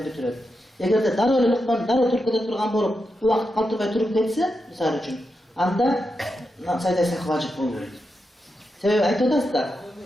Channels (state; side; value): normal; both; correlation 0.87